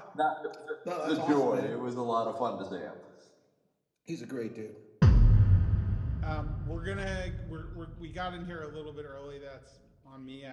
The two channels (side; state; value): both; identical; correlation 1.00